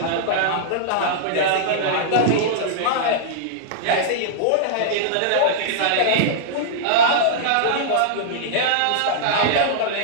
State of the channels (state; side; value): different; both; correlation -0.02